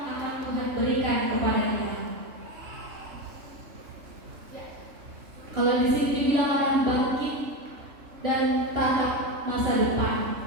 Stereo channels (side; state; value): left; late; 3.3 ms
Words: akan Tuhan berikan kepada kita. Kalau di sini dibilang akan bangkit dan tatap masa depan.